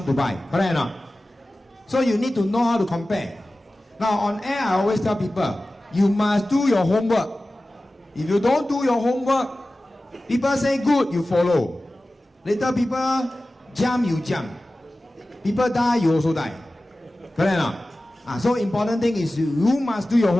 to buy. Correct or not? So you need to know how to compare. Now on air, I always tell people, you must do your homework. If you don't do your homework, people say good, you follow. Later people jump, you jump. People die, you also die. Correct or not? So important thing is you must do your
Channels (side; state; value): both; normal; correlation 0.96